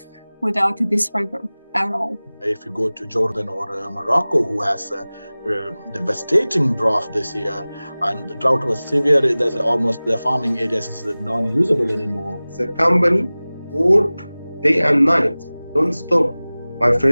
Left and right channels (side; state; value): both; inverted; correlation -0.99